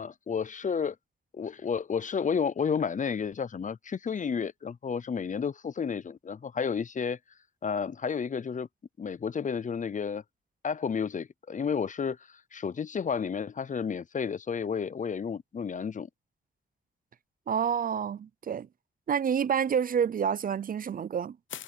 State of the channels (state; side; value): normal; both; correlation 0.31